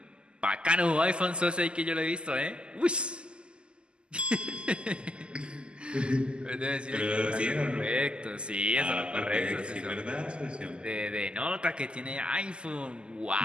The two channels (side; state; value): left; late; 0.050 ms